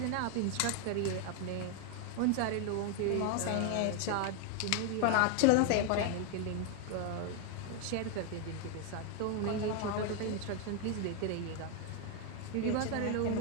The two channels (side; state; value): both; different; correlation 0.01